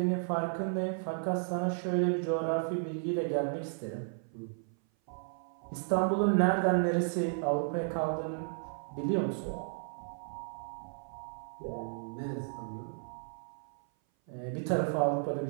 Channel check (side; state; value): left; silent; 55 dB below the other